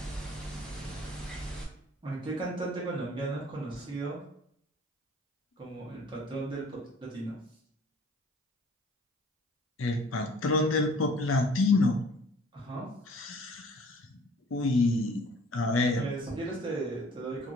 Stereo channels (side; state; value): both; normal; correlation 0.52